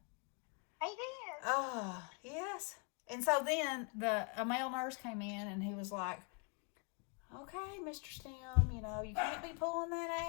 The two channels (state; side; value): quieter; right; 35.1 dB